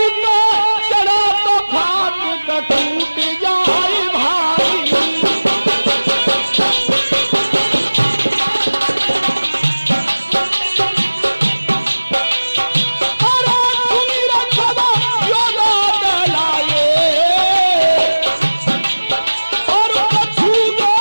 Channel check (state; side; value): inverted; both; correlation -1.00